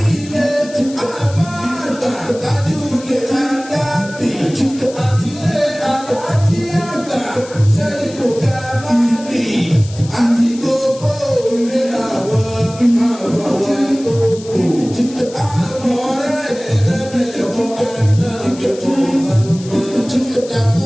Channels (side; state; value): left; noise; hiss, 18 dB below the sound